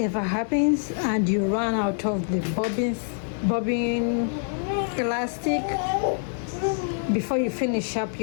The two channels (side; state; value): right; silent; digital silence